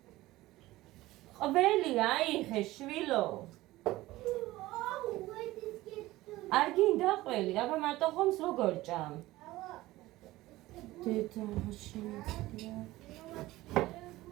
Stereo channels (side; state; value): left; quieter; 17.7 dB